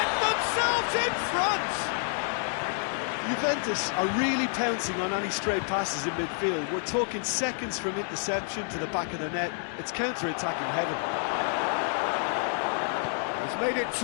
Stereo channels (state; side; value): silent; right; 59 dB below the other